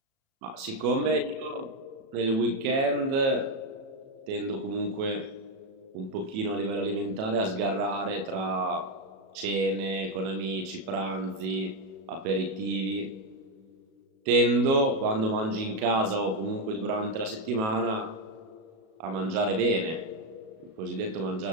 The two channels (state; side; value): late; left; 37 ms